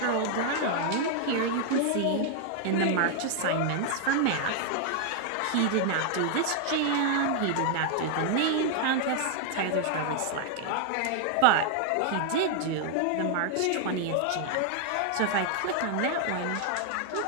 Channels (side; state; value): both; different; correlation 0.00